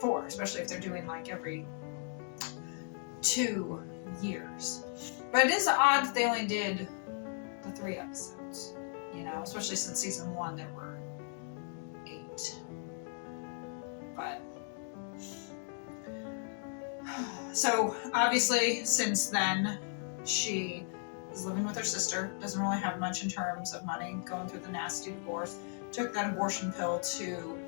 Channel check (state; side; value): silent; right; 54 dB below the other